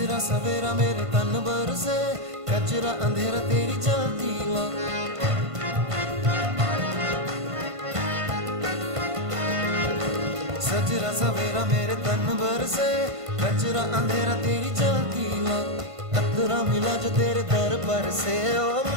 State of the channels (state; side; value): late; left; 1.5 ms